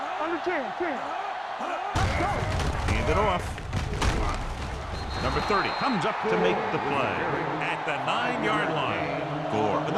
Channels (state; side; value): identical; both; correlation 1.00